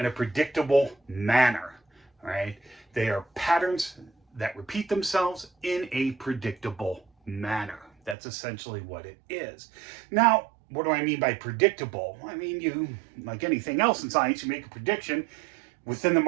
a predictable manner. All right? They are patterns that repeat themselves in a predictable manner. That's essentially what it is. Now, what do I mean by predictable? I mean, you, like anything else in science, you make a prediction within the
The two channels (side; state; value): left; drops out; at 8.2 s